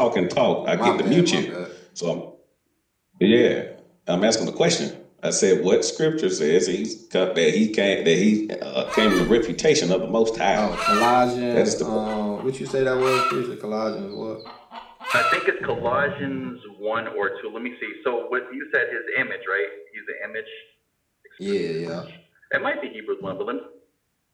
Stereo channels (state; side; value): identical; both; correlation 1.00